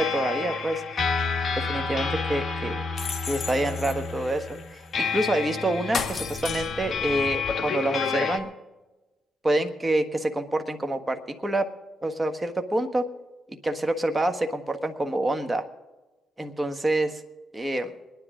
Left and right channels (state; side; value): normal; both; correlation 0.82